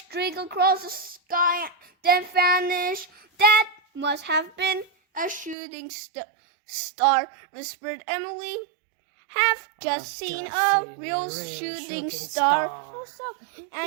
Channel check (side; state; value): left; drops out; at 5.6 s